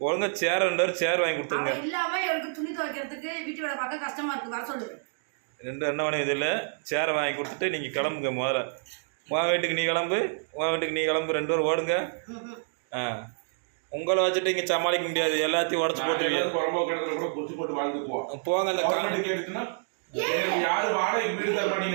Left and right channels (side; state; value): left; silent; digital silence